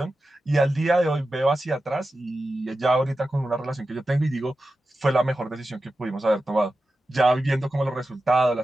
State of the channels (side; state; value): both; normal; correlation 0.92